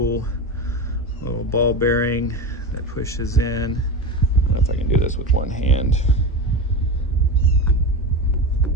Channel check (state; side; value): normal; both; correlation 0.22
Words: little ball bearing that pushes in. I don't know if I can do this with one hand.